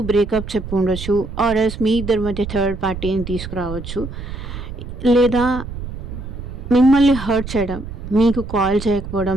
బ్రేకప్ చెప్పి ఉండొచ్చు, ఆర్ ఎల్స్ మీ ఇద్దరి మధ్య థర్డ్ పార్టీని తీసుకురావచ్చు. లేదా మిమ్మల్ని హర్ట్ చేయడం, మీకు కాల్ చేయకపోవడం,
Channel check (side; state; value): right; noise; rumble, 9 dB below the sound